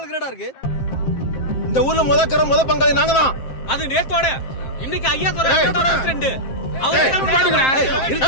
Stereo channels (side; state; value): right; late; 7.6 ms